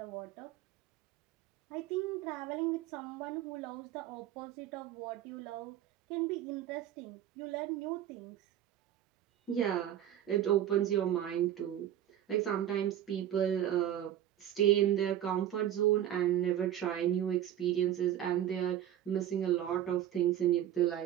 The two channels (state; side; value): quieter; left; 11.3 dB